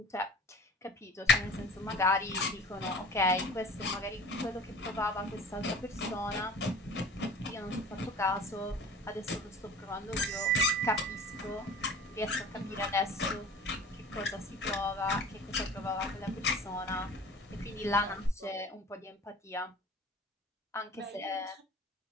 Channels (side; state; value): both; normal; correlation 0.42